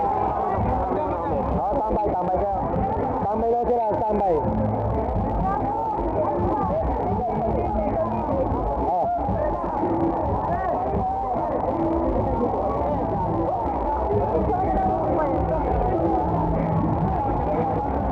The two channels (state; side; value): identical; both; correlation 1.00